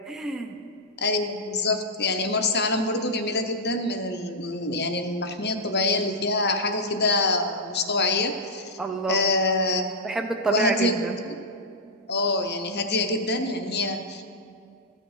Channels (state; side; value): normal; both; correlation -0.09